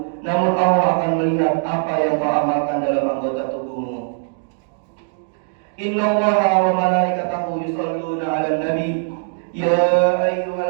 namun Allah akan melihat apa yang kau amalkan dalam anggota tubuhmu. Innallaha wa malaikatahu yusholluna 'alan nabi. Ya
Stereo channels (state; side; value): silent; left; digital silence